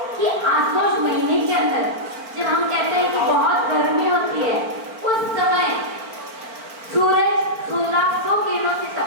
कि आसोज महीने के अंदर जब हम कहते हैं कि बहुत गर्मी होती है, उस समय सूरज 1600 किरणों से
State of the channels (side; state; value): left; late; 4.5 ms